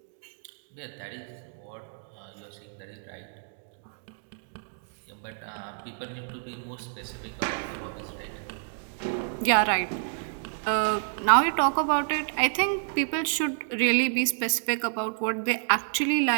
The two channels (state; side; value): silent; left; digital silence